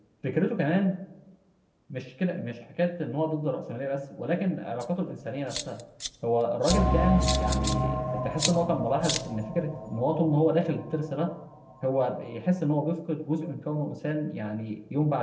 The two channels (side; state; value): both; identical; correlation 1.00